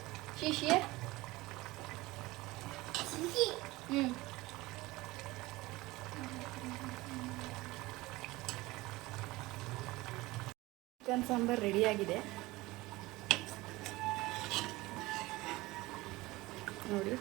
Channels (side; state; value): left; quieter; 20.1 dB